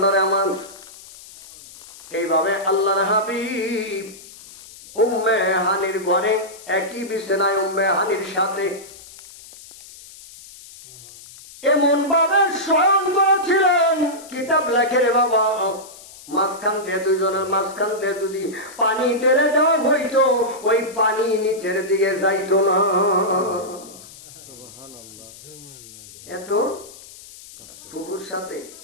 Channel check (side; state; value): left; noise; hiss, 19 dB below the sound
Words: আমার এইভাবে আল্লাহর হাবিব উম্মে হানির ঘরে একই বিছানায় উম্মে হানির সাথে এমন ভাবে শয়ন করেছিলেন, কিতাব লেখে রে বাবা, মাঝখান দিয়ে দুইজনের মাঝখান দিয়ে যদি পানি টেনে দেওয়া হইতো, ওই পানি নিচের দিকে যাইতো না। এত ফুফুর সাথে